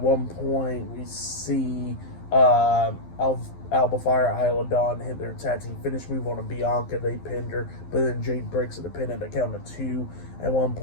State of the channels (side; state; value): right; late; 12 ms